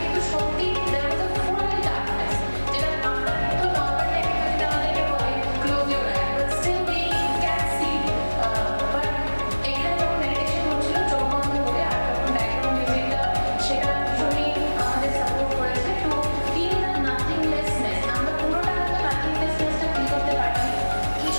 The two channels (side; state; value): both; inverted; correlation -1.00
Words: কিন্তু সত্যি there was a full darkness, যেটা আমরা কিন্তু নর্মাল টাইমে যদি আমাদেরকে বলে close your eye, but still we can see, but এখানে যখন মেডিটেশন হচ্ছিল চোখ বন্ধ করে, আর যখন ব্যাকগ্রাউন্ড মিউজিকটা সেটা ভীষণই আমাদের সাপোর্ট করেছে টু ফিল দ্য নাথিংলেসনেস। আমরা পুরোটা হয়তো নাথিংলেসনেসটা ফিল করতে পারিনি,